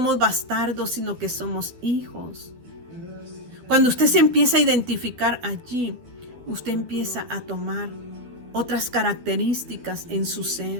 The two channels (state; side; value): late; left; 12 ms